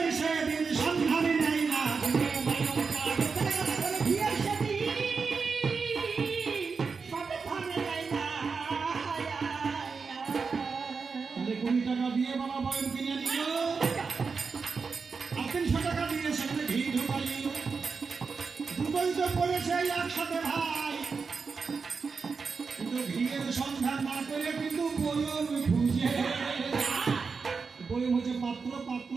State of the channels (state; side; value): quieter; left; 5.0 dB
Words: পড়েছে একসাথে ভাই, কিন্তু ঘিয়ের সন্ধান না করে কিন্তু বয়ম খুঁজে। বয়ম হচ্ছে পাত্র, পাত্র